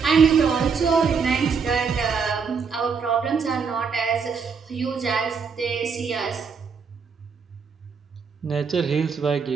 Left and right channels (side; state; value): left; quieter; 5.7 dB